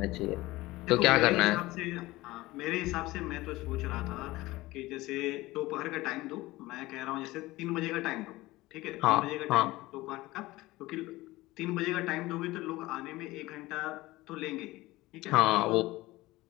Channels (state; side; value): quieter; right; 19.0 dB